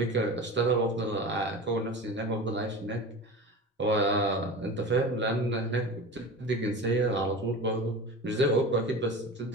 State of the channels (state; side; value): normal; both; correlation 0.31